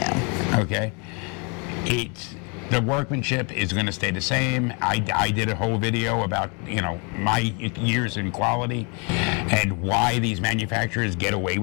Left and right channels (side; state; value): right; quieter; 33.9 dB